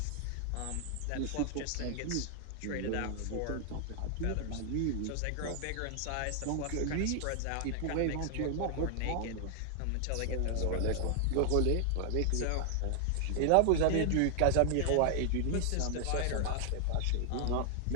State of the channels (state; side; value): different; both; correlation 0.00